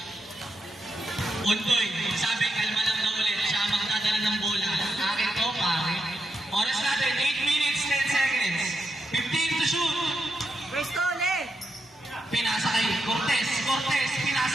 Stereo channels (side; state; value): both; normal; correlation 0.84